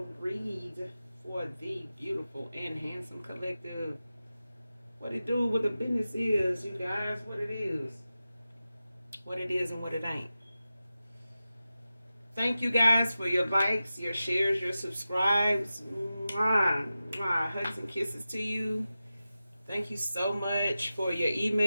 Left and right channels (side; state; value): both; inverted; correlation -0.94